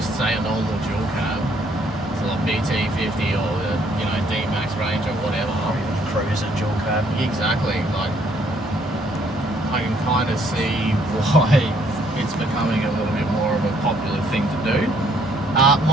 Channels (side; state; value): both; normal; correlation 0.66